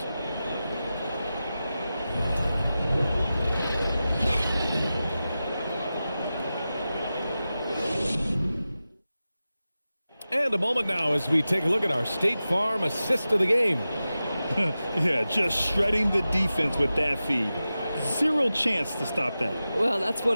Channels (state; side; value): inverted; both; correlation -0.94